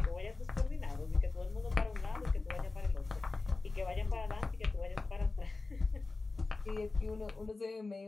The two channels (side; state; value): right; quieter; 3.6 dB